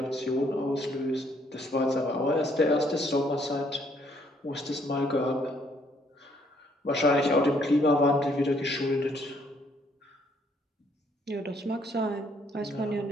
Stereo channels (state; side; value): normal; both; correlation 0.67